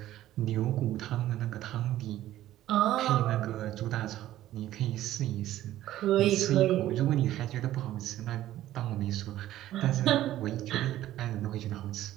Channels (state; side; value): quieter; left; 13.8 dB